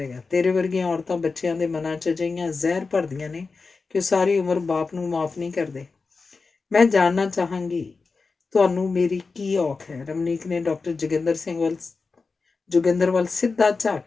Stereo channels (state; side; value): quieter; right; 4.3 dB